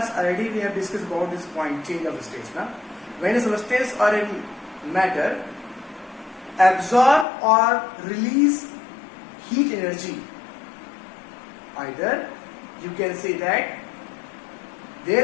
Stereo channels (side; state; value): right; drops out; at 7.2 s